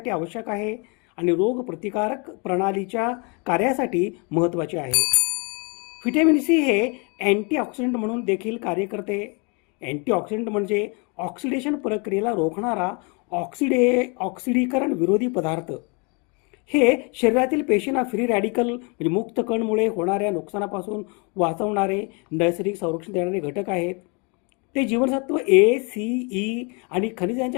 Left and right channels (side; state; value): right; quieter; 32.8 dB